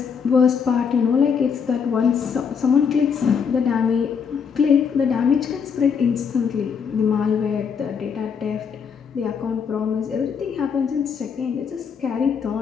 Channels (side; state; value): right; quieter; 6.5 dB